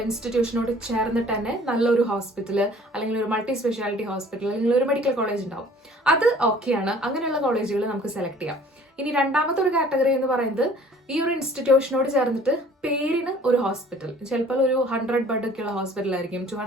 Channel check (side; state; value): both; normal; correlation 0.52